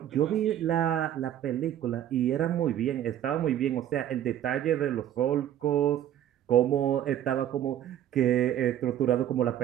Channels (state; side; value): quieter; left; 11.2 dB